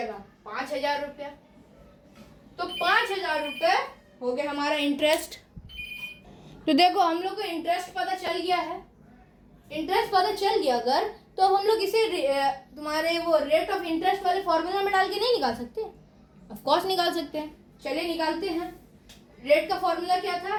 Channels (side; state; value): both; identical; correlation 1.00